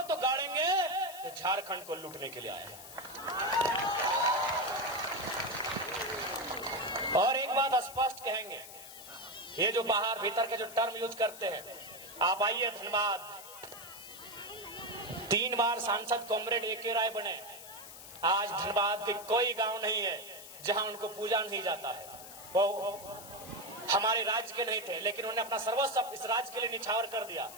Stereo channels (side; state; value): left; noise; hiss, 14 dB below the sound